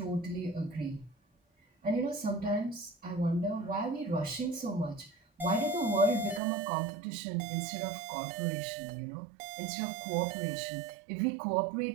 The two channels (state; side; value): drops out; left; at 6.4 s